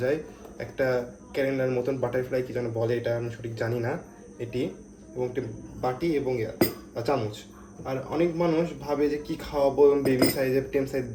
যায়, একটা ক্যালেন্ডার মতন বাটারফ্লাই কি যেন বলে, এটা আমি সঠিক জানি না এটি, এবং একটি বাটি এবং চামচ। আর অনেক মানুষ ভাবে যে কি খাওয়াবো এবং বেবি সাইজের টেম সাইজ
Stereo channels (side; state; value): both; identical; correlation 1.00